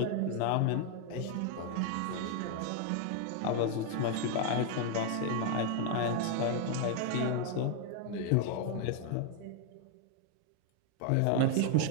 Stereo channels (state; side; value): different; both; correlation 0.01